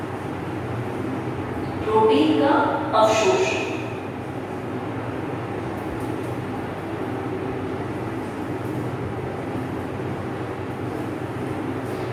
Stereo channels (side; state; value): both; identical; correlation 1.00